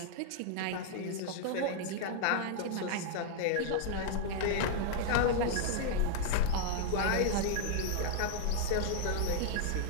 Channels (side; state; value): both; different; correlation 0.00